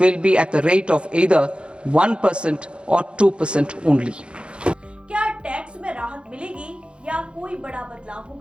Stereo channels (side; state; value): left; late; 0.056 ms